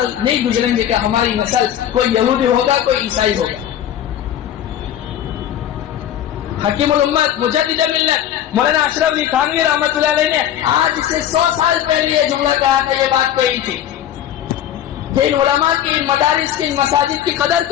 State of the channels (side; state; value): right; quieter; 10.8 dB